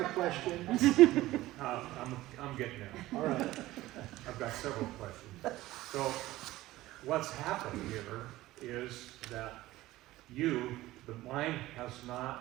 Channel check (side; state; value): left; quieter; 16.9 dB